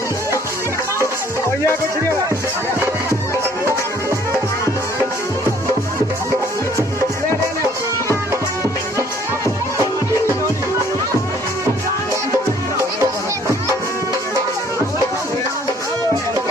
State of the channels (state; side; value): normal; both; correlation 0.59